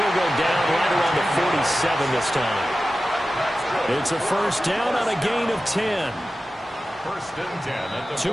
go down right around the 47 this time. It's a first down on a gain of 10. First and 10 at the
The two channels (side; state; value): both; normal; correlation 0.94